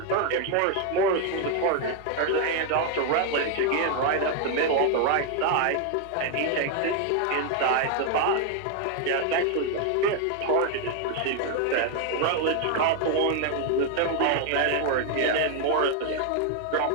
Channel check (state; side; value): different; both; correlation 0.00